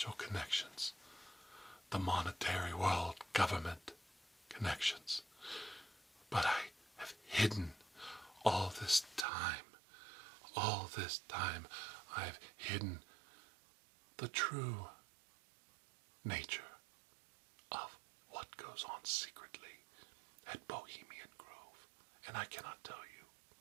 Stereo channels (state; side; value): drops out; left; at 9.2 s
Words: connections, the monetary world government connections. But I have hidden all this time, I've hidden the true nature of what goes on secretly at Bohemian Grove, and I cannot tell you.